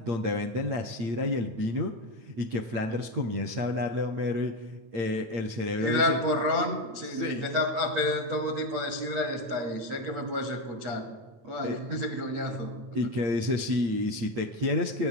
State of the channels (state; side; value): late; left; 8.8 ms